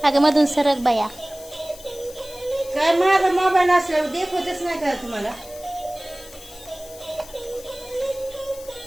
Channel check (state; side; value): noise; left; hiss, 18 dB below the sound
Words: अगं मधून सरक बाया काय माझा मोबाईल असल्यावर देखवतच नाही का तुम्हाला